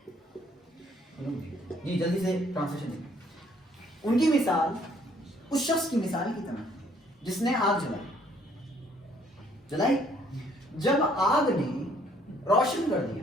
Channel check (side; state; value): both; normal; correlation 0.64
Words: یہ جلدی سے ٹرانسلیشن دیکھیں. ان کی مثال اس شخص کی مثال کی طرح جس نے آگ جلائی. جب آگ نے روشن کر دیا,